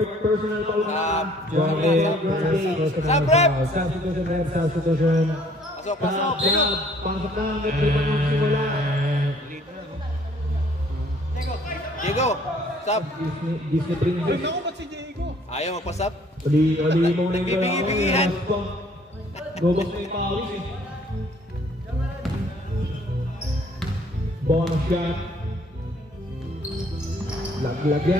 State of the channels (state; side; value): normal; both; correlation 0.59